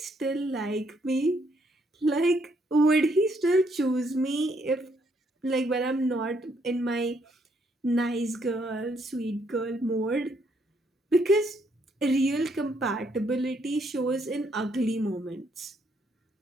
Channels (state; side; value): normal; both; correlation 0.72